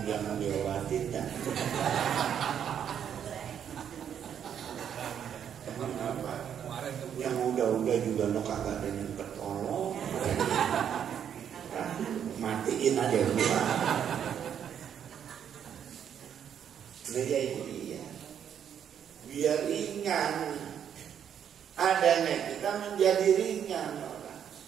jangan diobatin ya. Emang apa? Yang udah-udah juga no kagak ada yang ketolong. Matiin aja dulu. Nah ya itu dia. Biar ringan. Adanya kita menjadi ringan orang.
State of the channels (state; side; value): quieter; left; 8.8 dB